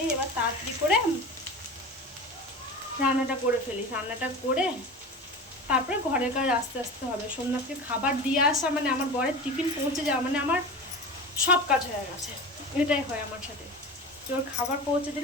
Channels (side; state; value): both; normal; correlation 0.31